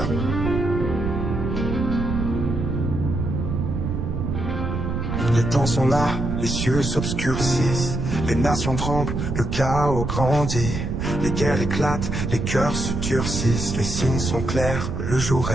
Les temps sont là, les cieux s'obscurcissent, les nations tremblent, le chaos grandit, les guerres éclatent, les cœurs se durcissent, les signes sont clairs, le jour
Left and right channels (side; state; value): right; noise; rumble, 2 dB below the sound